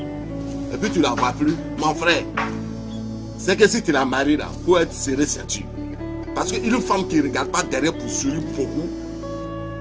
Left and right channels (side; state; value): both; identical; correlation 1.00